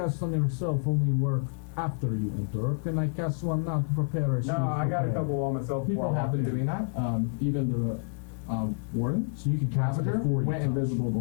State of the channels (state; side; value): silent; right; 59 dB below the other